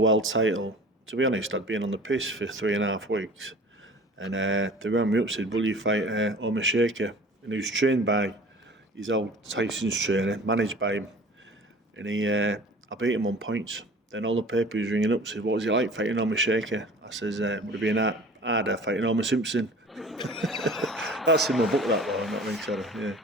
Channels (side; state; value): both; normal; correlation 0.44